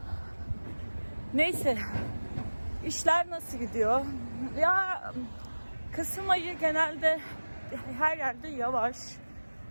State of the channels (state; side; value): inverted; both; correlation -1.00